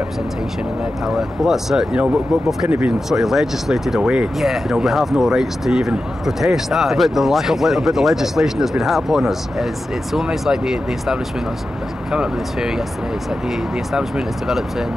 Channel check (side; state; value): both; normal; correlation 0.92